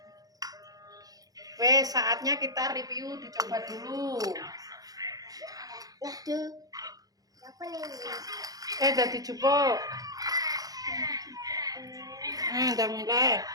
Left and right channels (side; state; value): left; late; 0.18 ms